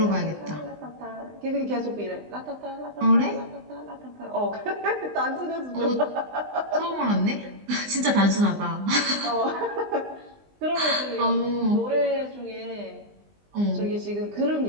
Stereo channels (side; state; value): left; late; 20 ms